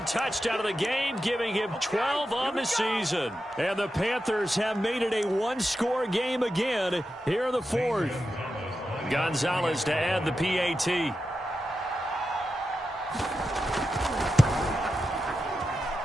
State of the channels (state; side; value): normal; both; correlation 0.90